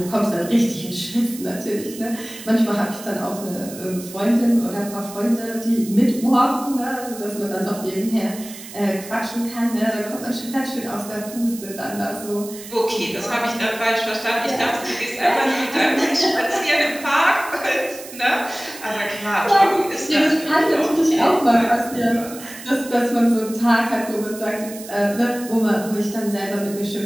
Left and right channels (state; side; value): noise; right; hiss, 14 dB below the sound